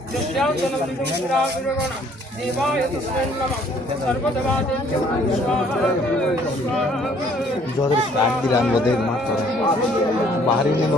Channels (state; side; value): normal; both; correlation 0.60